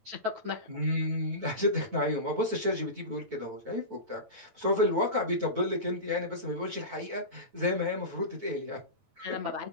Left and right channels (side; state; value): left; late; 9.0 ms